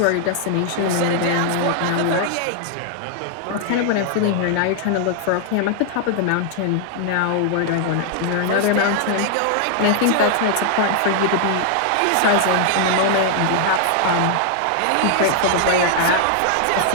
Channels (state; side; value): different; both; correlation 0.00